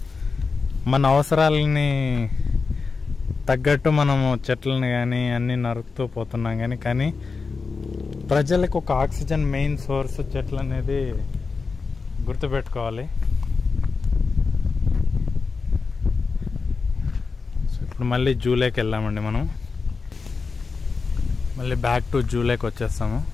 మన అవసరాలని తగ్గట్టు మనము చెట్లను కానీ అన్నీ నరుకుతూ పోతున్నాం కానీ ప్రజలకు ఒక ఆక్సిజన్ మెయిన్ సోర్స్ చెట్లు అనేది గుర్తుపెట్టుకోవాలి. ఇప్పుడు మళ్ళీ జూలైకి వెళ్ళామండి. మనం మళ్ళీ బ్యాక్ టు జూలైకి వచ్చేస్తాము.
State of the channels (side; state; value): right; quieter; 4.6 dB